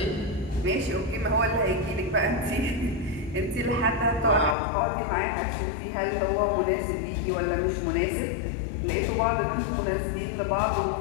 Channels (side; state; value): right; drops out; at 4.5 s